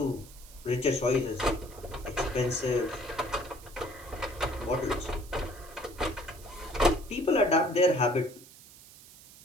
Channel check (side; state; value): right; noise; hiss, 20 dB below the sound